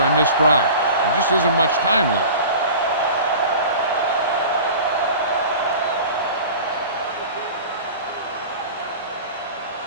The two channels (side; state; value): both; inverted; correlation -0.37